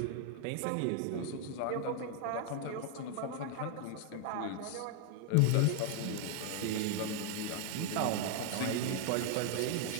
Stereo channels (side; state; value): both; different; correlation 0.00